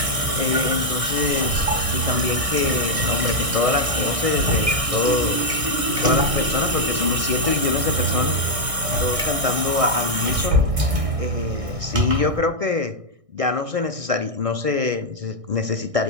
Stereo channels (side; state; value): left; late; 1.6 ms